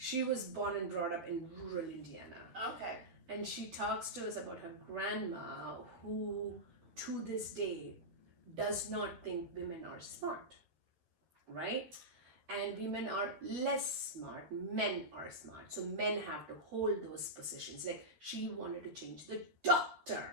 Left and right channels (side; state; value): left; late; 12 ms